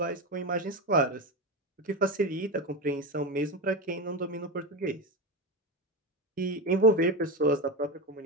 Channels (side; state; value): both; normal; correlation 0.15